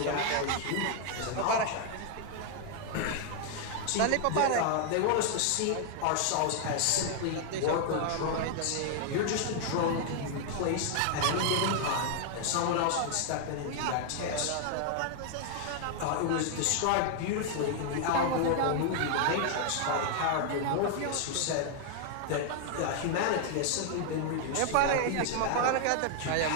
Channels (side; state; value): both; different; correlation 0.00